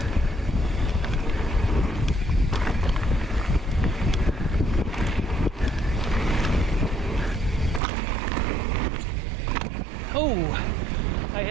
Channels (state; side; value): drops out; left; at 7.8 s